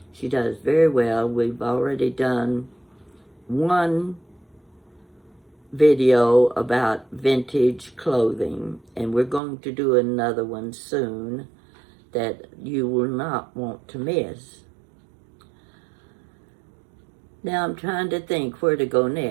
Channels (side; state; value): left; drops out; at 9.4 s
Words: She does very well. We've already done one video about vintage clothing, and we're going to do another one soon that you will not want to miss. Now I'm trying to think where to go